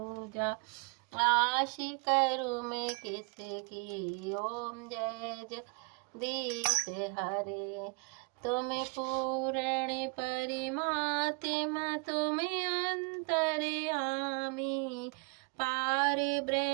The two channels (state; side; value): quieter; left; 33.5 dB